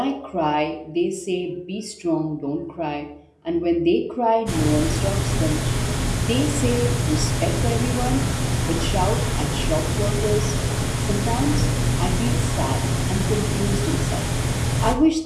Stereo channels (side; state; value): both; identical; correlation 1.00